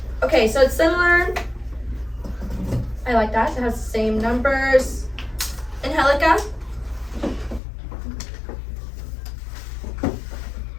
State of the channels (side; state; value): right; drops out; at 7.6 s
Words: Okay, so it's similar. I like that. It has the same numbers. Angelica?